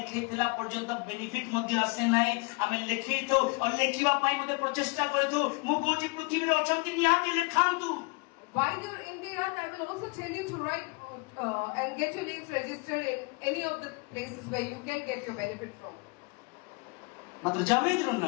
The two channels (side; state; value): right; quieter; 29.7 dB